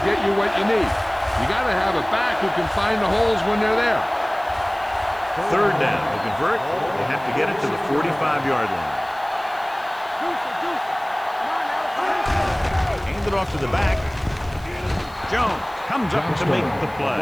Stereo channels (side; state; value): right; noise; hiss, 25 dB below the sound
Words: get you what you need. You got to have a back who can find the holes when they're there. Third down. To convert, they have to get it to the 45-yard line. Hand it off to the back. Jones comes up to make the